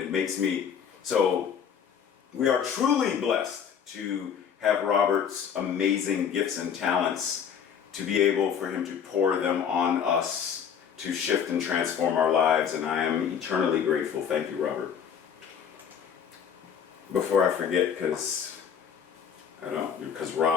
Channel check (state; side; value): quieter; right; 7.8 dB